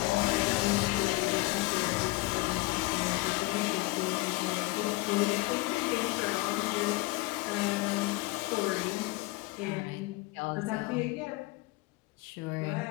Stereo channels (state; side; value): quieter; right; 21.4 dB